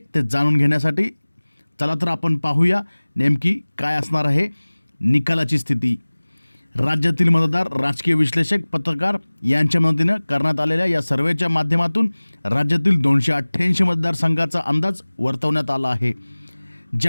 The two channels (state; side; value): inverted; both; correlation -1.00